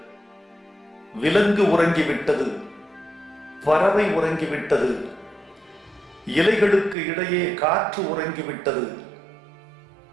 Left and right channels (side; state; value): left; drops out; at 7.0 s